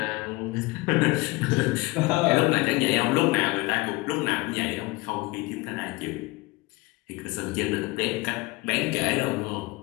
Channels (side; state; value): right; quieter; 22.7 dB